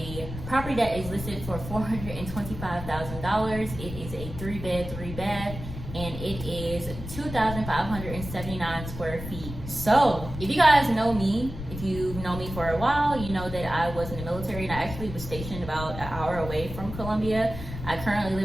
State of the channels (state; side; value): noise; left; rumble, 9 dB below the sound